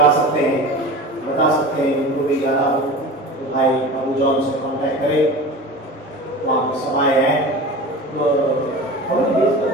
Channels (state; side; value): normal; both; correlation 0.34